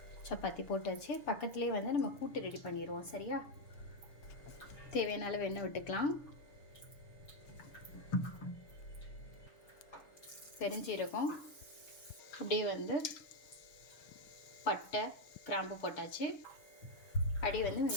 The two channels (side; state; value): right; late; 6.8 ms